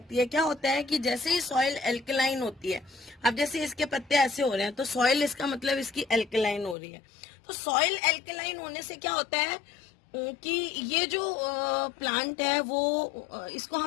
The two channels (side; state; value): right; drops out; at 6.8 s